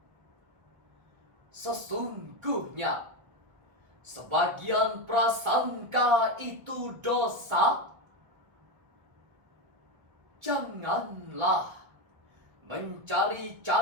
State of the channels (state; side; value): late; left; 1.4 ms